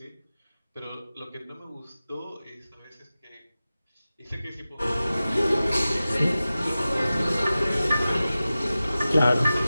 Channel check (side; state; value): both; inverted; correlation -0.95